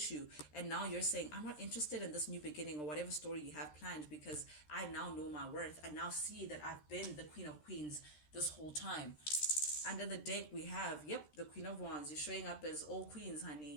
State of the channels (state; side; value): late; right; 13 ms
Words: you. And now you're saying, I'm not interested in this new beginning or whatever story you have planned because I now know my worth. I now see that I've been the queen of queens this whole time. Under the deck we have, yep, the Queen of Wands. You're showing up as all queens,